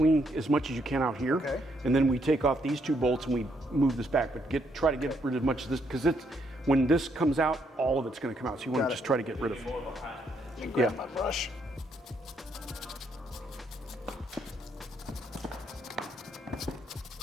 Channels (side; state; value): both; normal; correlation 0.74